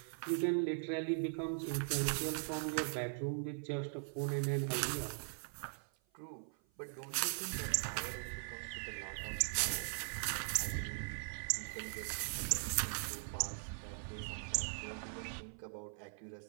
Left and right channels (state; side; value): silent; left; 51 dB below the other